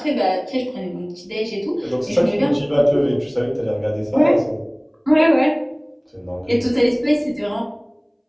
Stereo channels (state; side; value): identical; both; correlation 1.00